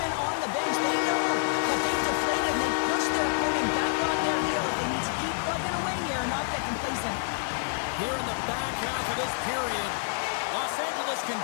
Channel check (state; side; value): silent; right; 59 dB below the other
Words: on the bench. They know that they've deflated and they push their opponent back on their heels. They need to keep plugging away here and not get complacent. Here in the back half of this period, Los Angeles